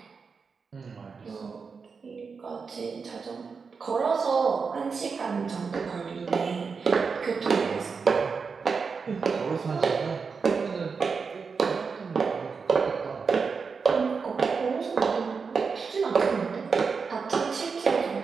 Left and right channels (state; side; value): quieter; left; 5.2 dB